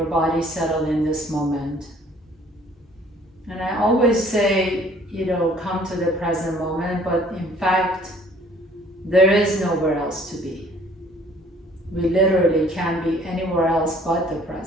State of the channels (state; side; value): normal; both; correlation 0.56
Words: body settle in this moment. And I always say, come to the present moment, but in fact, there is nowhere else to be. We literally can't be anywhere else but the